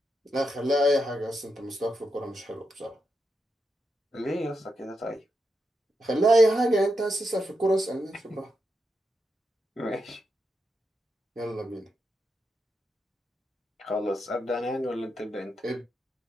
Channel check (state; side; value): normal; both; correlation 0.85